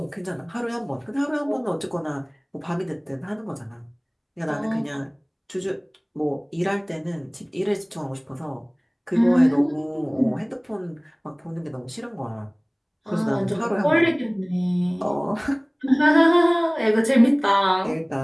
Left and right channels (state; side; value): identical; both; correlation 1.00